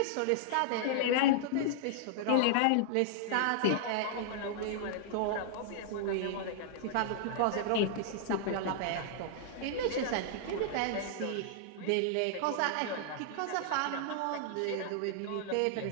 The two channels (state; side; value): different; both; correlation -0.01